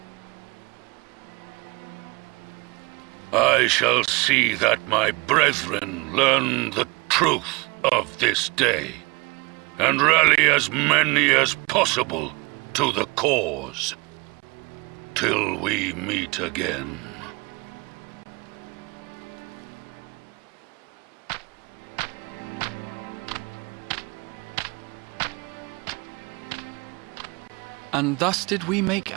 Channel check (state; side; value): quieter; left; 26.4 dB